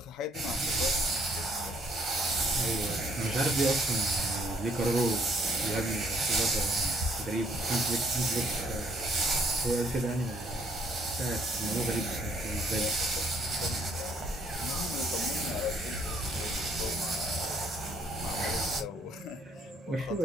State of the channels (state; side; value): normal; both; correlation 0.66